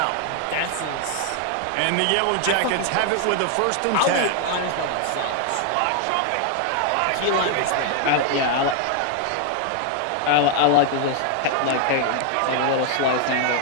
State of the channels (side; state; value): both; different; correlation 0.00